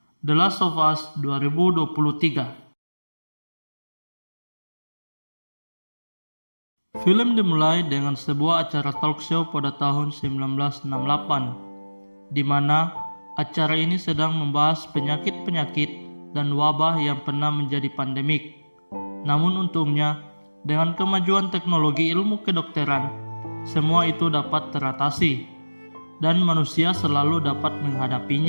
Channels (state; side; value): inverted; both; correlation -1.00